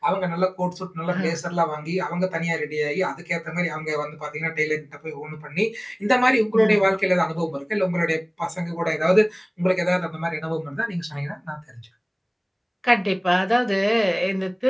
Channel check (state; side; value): identical; both; correlation 1.00